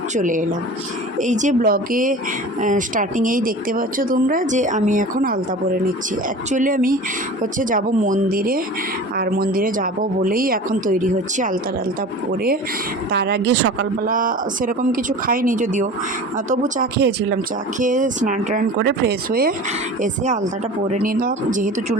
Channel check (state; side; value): normal; both; correlation 0.37